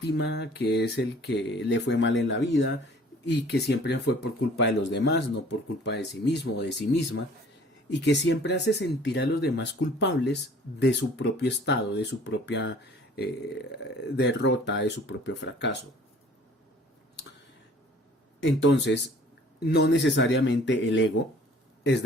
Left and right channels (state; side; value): normal; both; correlation 0.52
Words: que es el que le fue mal en la vida y que siempre fue por culpa de los demás, no por culpa de sí mismo o de sí misma, y que siempre hace sentir a los demás culpables de su propio estado, de su propia derrota, de su propio fracaso. Entonces, no necesariamente el ego es